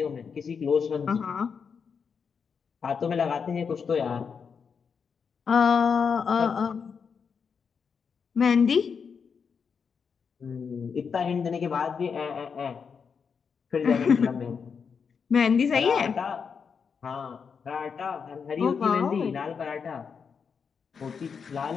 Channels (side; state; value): right; quieter; 6.2 dB